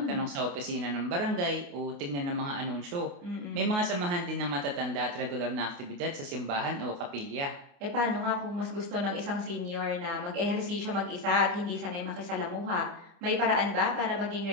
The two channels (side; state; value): left; late; 28 ms